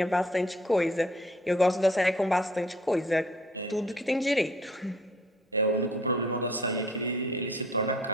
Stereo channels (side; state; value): both; normal; correlation 0.56